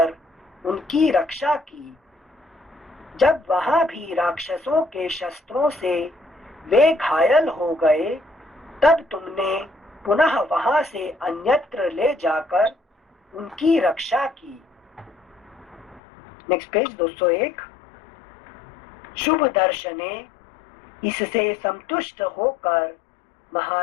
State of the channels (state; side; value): drops out; right; at 16.0 s